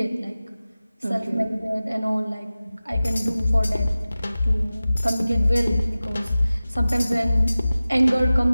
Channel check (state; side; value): inverted; both; correlation -0.96